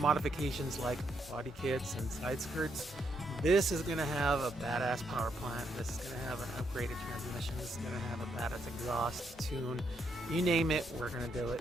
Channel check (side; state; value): both; normal; correlation 0.77